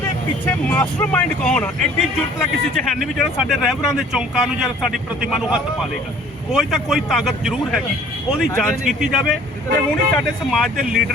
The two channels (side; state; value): both; normal; correlation 0.53